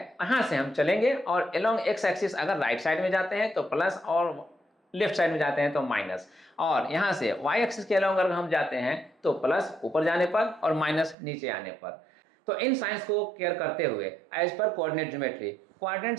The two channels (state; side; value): drops out; left; at 11.2 s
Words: से हम चलेंगे और अलोंग एक्स एक्सिस अगर राइट साइड में जाते हैं तो प्लस और लेफ्ट साइड में जाते हैं तो माइनस, और यहाँ से वाई एक्सिस के अलोंग अगर हम जाते हैं तो प्लस ऊपर जाने पर और माइनस नीचे आने पर। तो इन साइंस को केयर करते हुए as per coordinate geometry